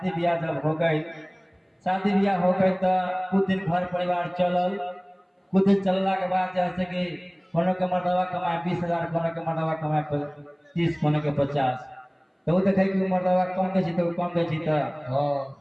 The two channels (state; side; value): identical; both; correlation 1.00